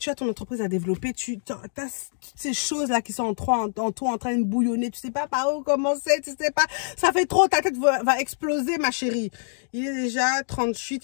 as ton entreprise à développer. Tu as toutes ces choses-là qui sont en toi en train de bouillonner. Tu sais pas par où commencer. Tu sais pas. Ça fait trop. Ta tête va exploser, ma chérie. Il est déjà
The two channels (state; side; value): silent; right; digital silence